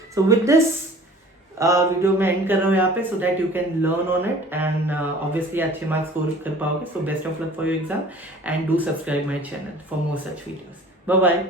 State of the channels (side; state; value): both; normal; correlation 0.47